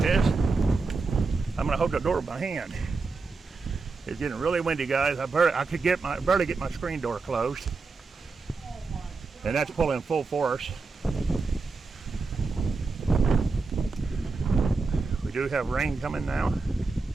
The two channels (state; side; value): quieter; left; 4.2 dB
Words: I'm gonna hold the door with my hand. It's getting really windy, guys. I could barely get my screen door closed, and that's pulling full force. We do have rain coming now.